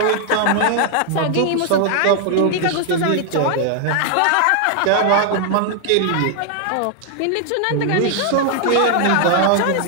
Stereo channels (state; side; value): different; both; correlation 0.00